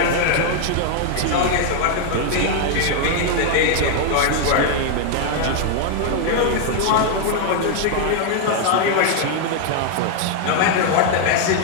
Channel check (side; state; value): both; different; correlation 0.00